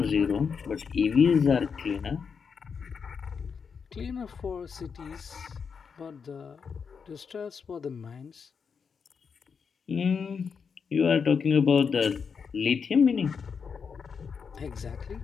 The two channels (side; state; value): right; quieter; 6.1 dB